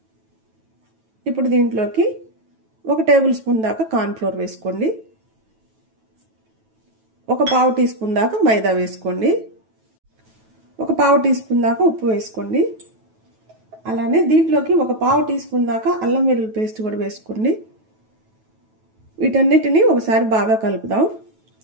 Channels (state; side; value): late; left; 9.2 ms